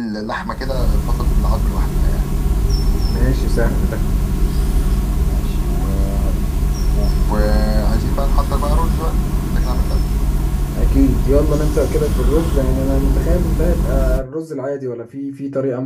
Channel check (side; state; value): both; identical; correlation 1.00